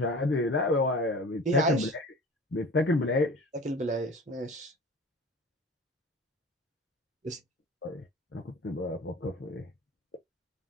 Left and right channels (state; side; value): normal; both; correlation 0.40